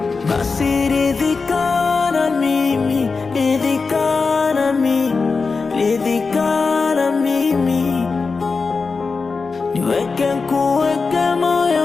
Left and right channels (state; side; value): quieter; right; 4.5 dB